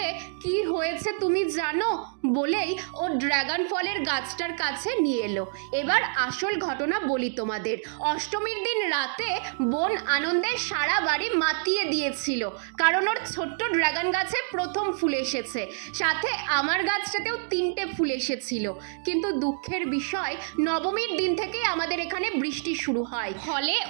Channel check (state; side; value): silent; left; 60 dB below the other